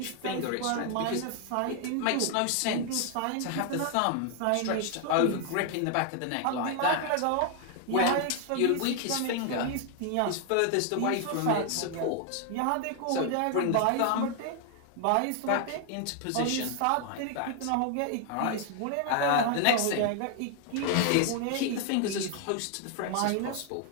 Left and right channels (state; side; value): different; both; correlation 0.00